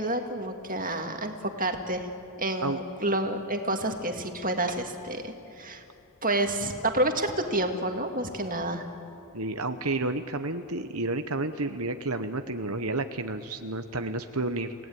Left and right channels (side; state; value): both; normal; correlation -0.04